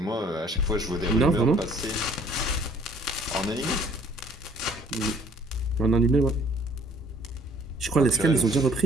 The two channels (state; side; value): normal; both; correlation 0.58